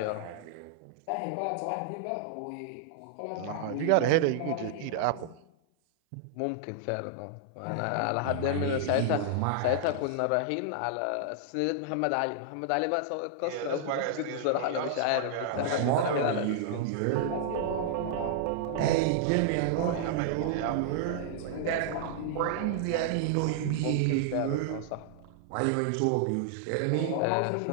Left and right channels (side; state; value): both; different; correlation -0.01